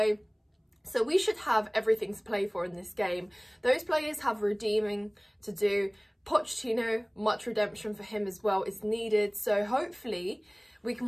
So we should have everything to play for in this game. Those players have redeeming to do. Pochettino, much redemption for him as well is needed. So hopefully we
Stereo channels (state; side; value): identical; both; correlation 1.00